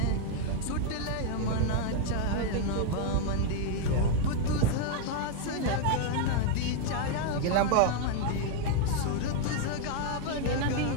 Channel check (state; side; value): different; both; correlation 0.00